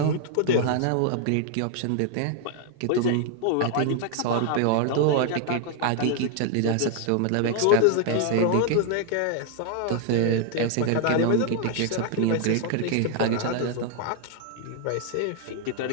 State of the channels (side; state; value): both; different; correlation 0.00